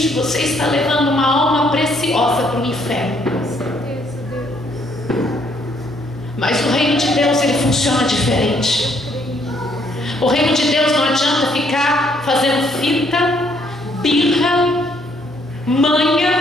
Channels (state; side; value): normal; both; correlation 0.68